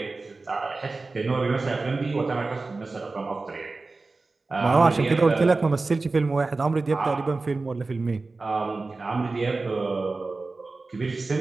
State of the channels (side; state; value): left; quieter; 3.6 dB